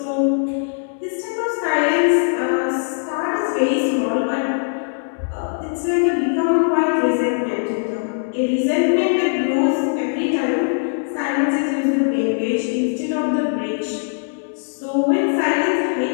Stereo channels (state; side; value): silent; right; digital silence